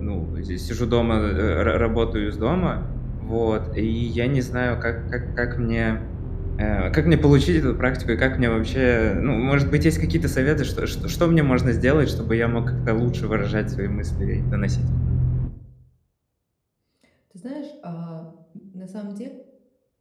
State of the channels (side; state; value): both; identical; correlation 1.00